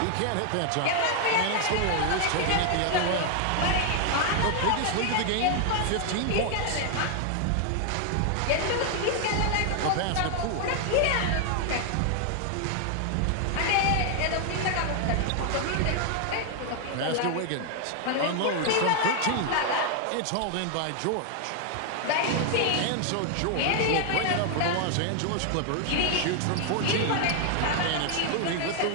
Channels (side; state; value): both; different; correlation 0.00